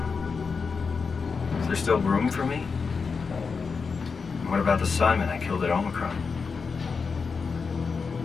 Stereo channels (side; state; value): right; quieter; 5.1 dB